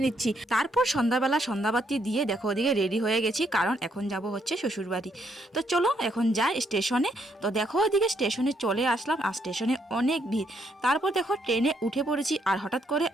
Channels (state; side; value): normal; both; correlation 0.74